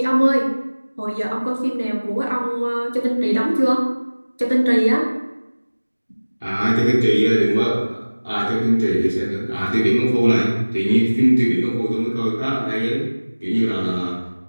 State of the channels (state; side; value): inverted; both; correlation -1.00